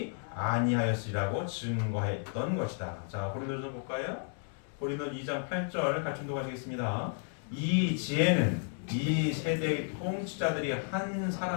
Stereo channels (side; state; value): right; silent; 56 dB below the other